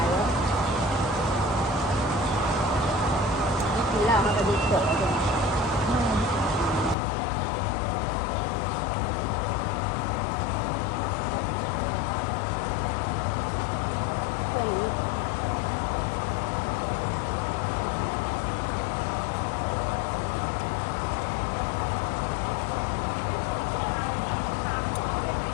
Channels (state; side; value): drops out; right; at 7.0 s